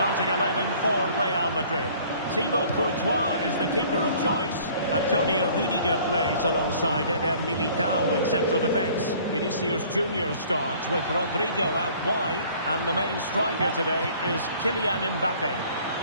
11 for Real Madrid. Thibaut Courtois is the keeper of choice. Antonio Rudiger plays alongside Eder Militao in central defence. Vinicius Junior starts with Rodrigo out wide. And the main striker today is Kylian Mbappe.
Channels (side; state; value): both; inverted; correlation -0.53